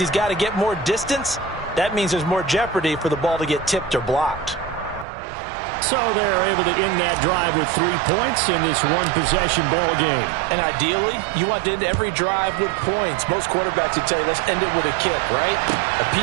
got to get more distance. That means there's more jeopardy for the ball to get tipped or blocked. So they're able to end that drive with 3 points in this one-possession ball game. And ideally, you want to end every drive with points. Most quarterbacks would tell you, let's end it with a kick, right? A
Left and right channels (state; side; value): drops out; left; at 5.1 s